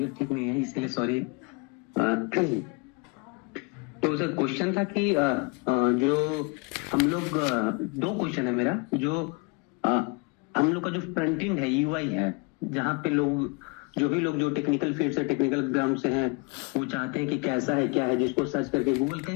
ठीक नहीं है, इसके लिए सॉरी। तो सर क्वेश्चन था कि जो हम लोग दो क्वेश्चन है मेरा, जो हम लोग का जो फ्रंट एंड है यूआई है, जहाँ पे लोग जो भी लोग जो टेक्निकल फील्ड से टेक्निकल ग्राउंड से हैं वो चाहते हैं कि कैसा है क्या है, जिसको सर्च करके गूगल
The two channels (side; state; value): right; quieter; 29.3 dB